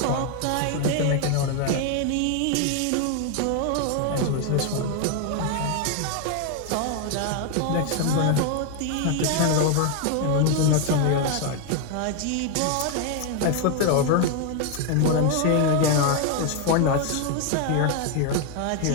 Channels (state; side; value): different; both; correlation 0.01